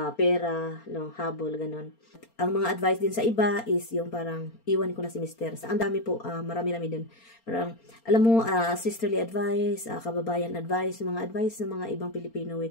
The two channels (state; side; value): late; right; 4.3 ms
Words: pera, no, habol, ganun. Ang mga advice din sa iba is yung parang iwan ko na si Mister. Sa ang dami po, marami-rami din. Parang, alam mo, sisterly advice, kababayan advice, mga advice ng mga ibang Pilipino,